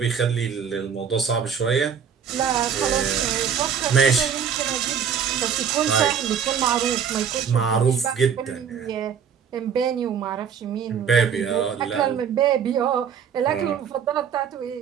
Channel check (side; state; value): left; quieter; 7.5 dB